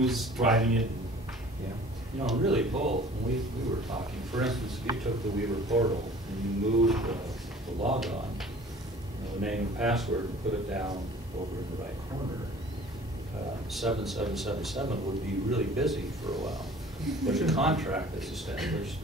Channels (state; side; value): normal; both; correlation 0.48